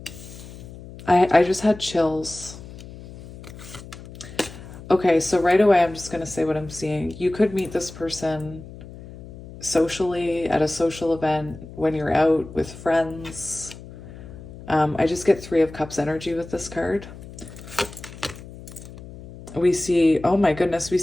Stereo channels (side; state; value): left; noise; hum, 15 dB below the sound